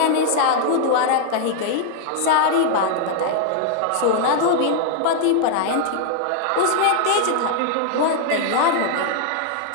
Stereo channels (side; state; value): both; different; correlation 0.00